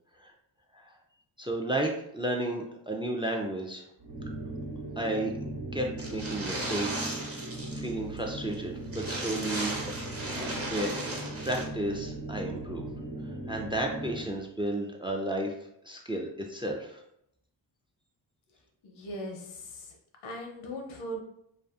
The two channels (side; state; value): both; normal; correlation 0.36